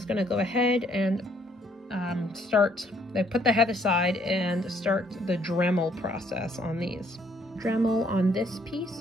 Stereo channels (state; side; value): normal; both; correlation 0.66